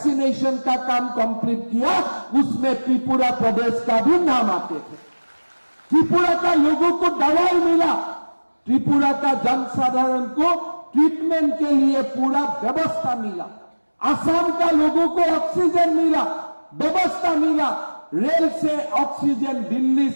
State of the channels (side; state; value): both; inverted; correlation -1.00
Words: का काम कंप्लीट किया, उसमें त्रिपुरा प्रदेश का भी नाम आते थे। त्रिपुरा का लोगों को दवाई मिला, त्रिपुरा का जनसाधारण को ट्रीटमेंट के लिए पूरा व्यवस्था मिला, असम का लोगों को ऑक्सीजन मिला, व्यवस्था मिला, रेल से ऑक्सीजन दिल्ली